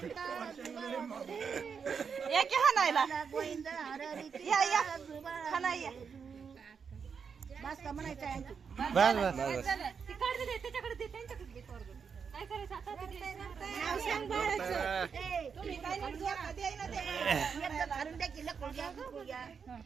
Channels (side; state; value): left; quieter; 6.2 dB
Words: गोविंदा बस का म्हणायचं आहे बस बस त्याच्याकडे दे त्यांच्याकडे नाव सांग बाळाचं. तुम्ही काय नाही जोडा द्याय ना ते. एकदा घालून द्या की लकुल घ्या, गुकुळ घ्या,